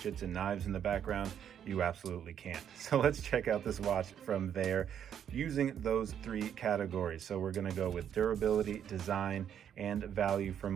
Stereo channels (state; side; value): quieter; left; 9.1 dB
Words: and knives in the background? You absolutely can't. So let's check out this watch from Vaer using those three categories. So we're gonna go with durability, design, and value for